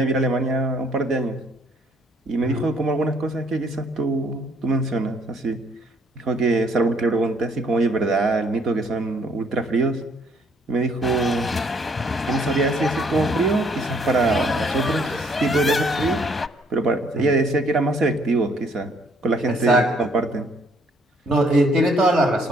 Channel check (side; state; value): both; normal; correlation 0.64